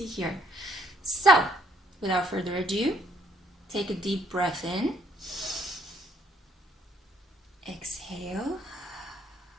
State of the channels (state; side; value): normal; both; correlation 0.66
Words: here. So, without further ado, take a deep breath in. Exhale.